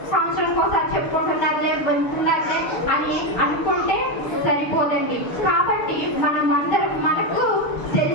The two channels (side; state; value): right; late; 6.7 ms